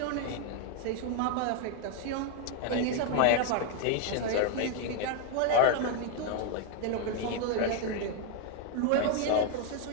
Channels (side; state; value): both; different; correlation 0.01